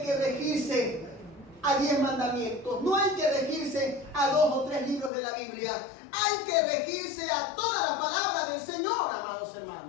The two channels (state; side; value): drops out; right; at 5.1 s